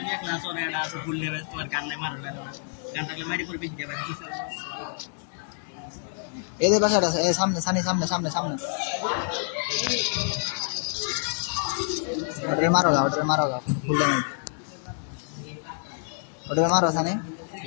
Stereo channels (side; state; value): right; silent; 60 dB below the other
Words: এদের বাসাটা আছে, সামনে সানি, সামনে সামনে সামনে, ওটারে মারো গা, ওটারে মারো গা, ফুল ড্যামেজ, ওটারে মারো সানি।